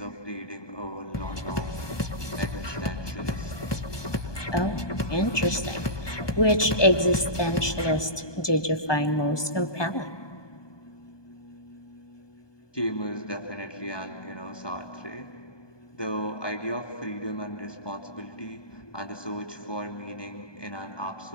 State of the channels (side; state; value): right; late; 1.2 ms